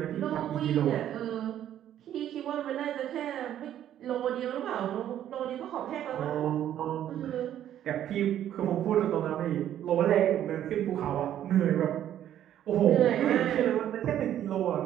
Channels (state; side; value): quieter; left; 11.1 dB